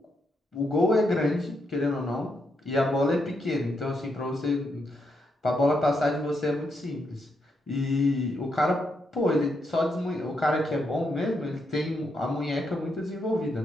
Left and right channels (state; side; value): normal; both; correlation 0.80